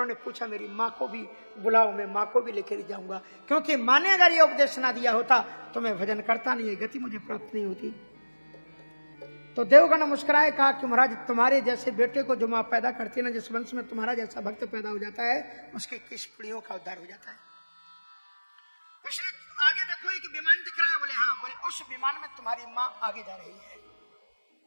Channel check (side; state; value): both; inverted; correlation -1.00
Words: पूछा मेरी माँ को भी बुलाओ, मैं माँ को भी लेकर जाऊंगा, क्योंकि माँ ने अगर ये उपदेश ना दिया होता तो मैं भजन करता नहीं, गति मुझे प्राप्त नहीं होती। तो देवगण मुस्कुराए कहा कि महाराज तुम्हारे जैसे बेटे को जो माँ पैदा करती है ना, जिस वंश में तुम्हारा जैसा भक्त पैदा हो जाता है उसके किस पीढ़ियों का उद्धार हो जाता है। आगे देखो एक विमान दिख रहा है, बोले हाँ, बोले उस विमान में तुम्हारी माँ आगे जा रही है।